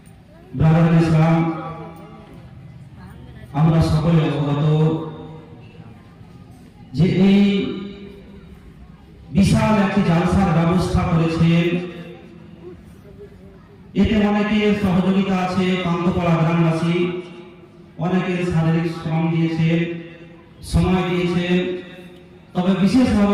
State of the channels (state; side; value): identical; both; correlation 1.00